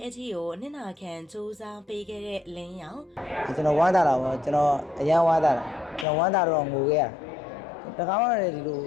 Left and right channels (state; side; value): drops out; right; at 6.1 s